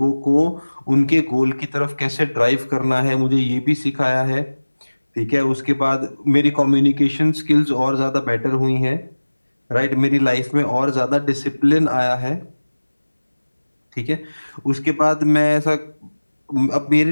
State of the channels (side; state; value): both; inverted; correlation -1.00